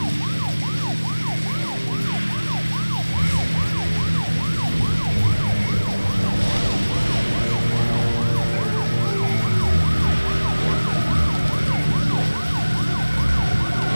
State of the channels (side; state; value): both; inverted; correlation -1.00